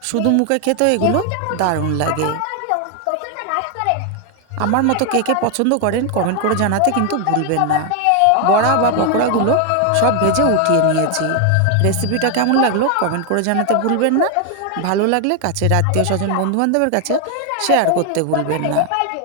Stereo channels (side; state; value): both; different; correlation 0.00